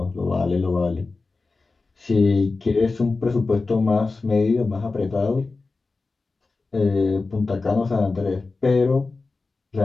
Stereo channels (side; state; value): right; quieter; 3.8 dB